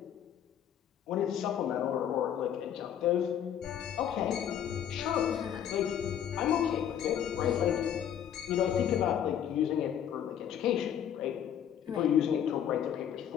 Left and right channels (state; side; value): quieter; right; 9.5 dB